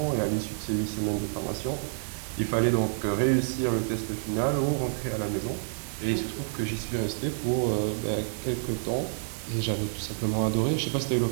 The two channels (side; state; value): left; silent; digital silence